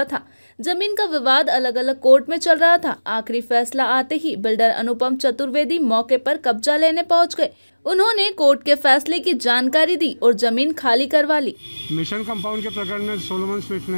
था। जमीन का विवाद अलग अलग कोर्ट में चल रहा था। आखिरी फैसला आते ही बिल्डर अनुपम चतुर्वेदी मौके पर कब्जा लेने पहुंच गए। उन्होंने कोर्ट के फैसले की जानकारी दी और जमीन खाली करवा ली। मिशन कंपाउंड के प्रकरण में सोलोमन स्मिथ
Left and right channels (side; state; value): both; inverted; correlation -1.00